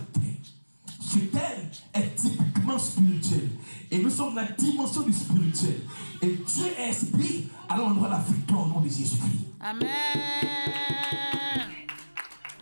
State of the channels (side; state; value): both; inverted; correlation -1.00